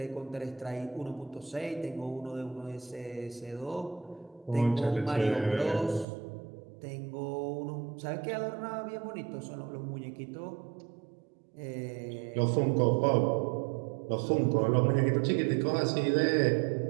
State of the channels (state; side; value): drops out; left; at 6.1 s